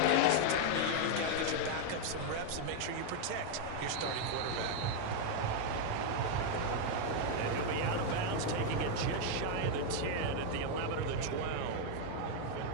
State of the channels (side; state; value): both; different; correlation 0.01